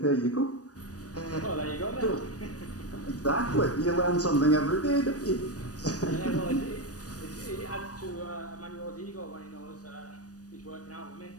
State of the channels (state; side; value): late; right; 0.67 ms